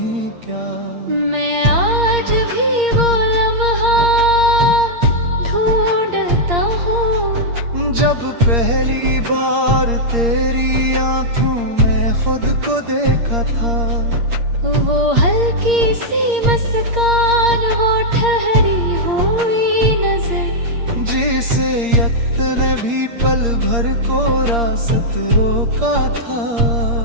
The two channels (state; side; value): late; left; 8.6 ms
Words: क्या। मैं आज भी वो लम्हा ढूंढता हूँ, जब पहली बार तेरी आंखों में खुद को देखा था। वो हल्की सी मुस्कान, वो ठहरी हुई नजर, जिसे यक्त ने भी पल भर को रास्त रोका था।